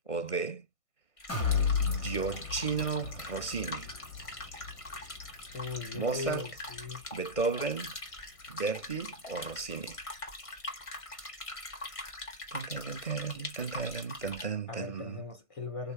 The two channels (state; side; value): late; right; 1.5 ms